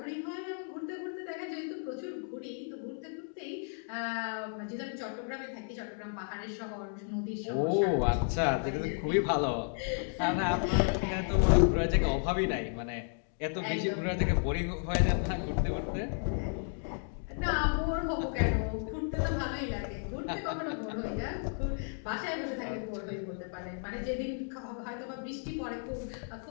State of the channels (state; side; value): silent; right; 56 dB below the other